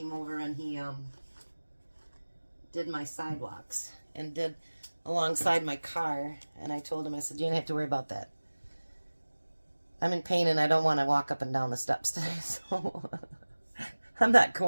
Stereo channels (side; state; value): both; inverted; correlation -1.00